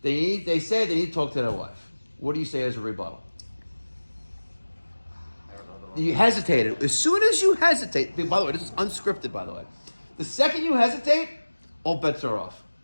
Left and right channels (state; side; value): inverted; both; correlation -1.00